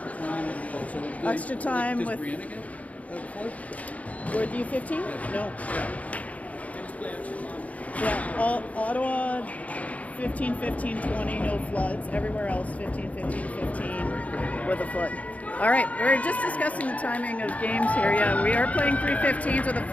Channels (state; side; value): late; right; 0.069 ms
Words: Extra time with you 15? No. Yeah, Ottawa 15, 15, 20, no floods. Everywhere else 15, 15, 15 with a flood. All right, we're just discussing the timing of games here. Yeah, we are playing 3:15s with a